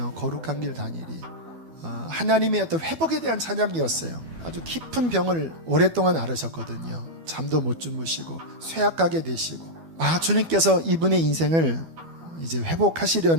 거룩한 길 다니리. 하나님의 어떤 회복에 대한 찬양이었어요. 아주 깊은 병을 오랫동안 앓으셨거든요. 잠도 못 주무시고 쇠약하게 되시고 주님께서 이분의 인생을 이제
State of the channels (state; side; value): late; left; 12 ms